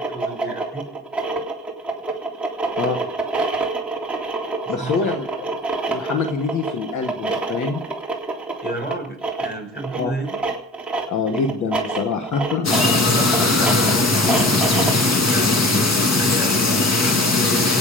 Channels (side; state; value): both; normal; correlation 0.40